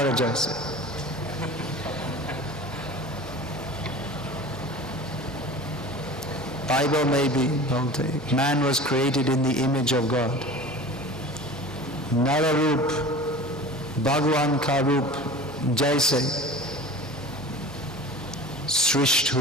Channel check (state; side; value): normal; both; correlation 0.37